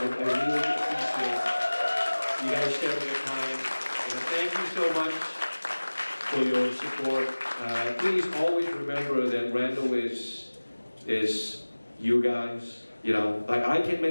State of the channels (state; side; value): inverted; both; correlation -1.00